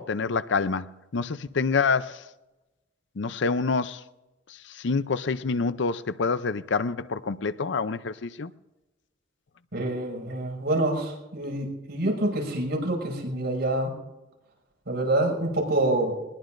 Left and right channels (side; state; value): both; normal; correlation 0.07